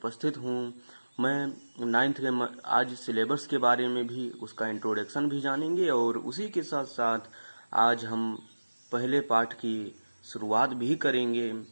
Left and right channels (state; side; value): inverted; both; correlation -1.00